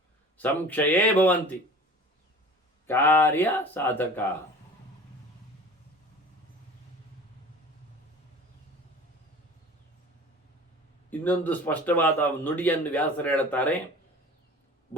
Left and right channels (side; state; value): both; normal; correlation 0.41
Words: ಸಂಕ್ಷಯೇ ಭವಂತಿ ಕಾರ್ಯ ಸಾಧಕ. ಇನ್ನೊಂದು ಸ್ಪಷ್ಟವಾದ ನುಡಿಯನ್ನು ವ್ಯಾಸರು ಹೇಳುತ್ತಾರೆ.